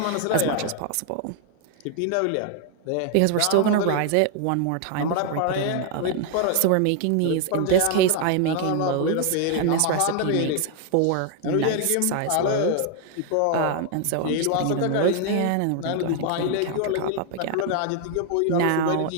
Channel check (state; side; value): different; both; correlation 0.00